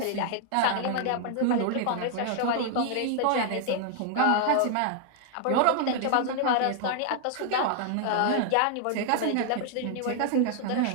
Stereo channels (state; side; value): different; both; correlation 0.00